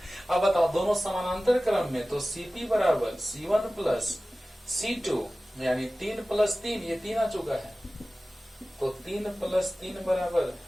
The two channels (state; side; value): normal; both; correlation 0.97